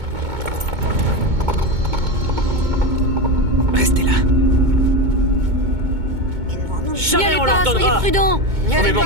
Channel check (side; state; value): left; late; 2.2 ms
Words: Restez là. N'y allez pas, soyez prudents. On ne